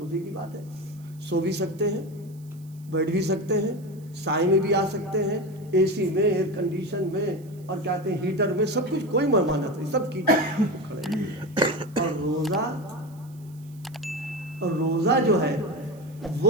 کی بات ہے. سو بھی سکتے ہیں, بیٹھ بھی سکتے ہیں, سائے میں بھی آ سکتے ہیں, اے سی میں, ایئر کنڈیشن میں, اور کہتے ہیں ہیٹر میں, سب کچھ, کوئی ممانعت نہیں, سب کیجیے. اور روزہ جو ہے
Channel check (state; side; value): noise; right; hiss, 28 dB below the sound